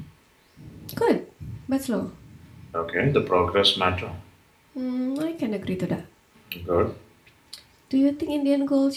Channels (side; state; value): both; identical; correlation 1.00